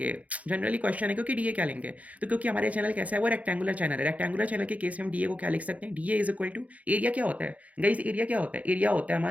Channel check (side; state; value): left; late; 0.069 ms